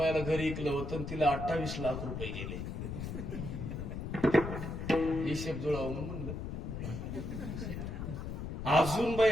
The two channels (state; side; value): noise; left; rumble, 5 dB below the sound